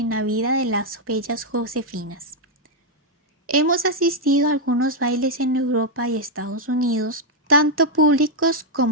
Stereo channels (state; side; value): normal; both; correlation -0.01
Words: la vida de las bellas Josefinas. Hemos asistido a algunos bailes en Europa y Estados Unidos, tanto públicos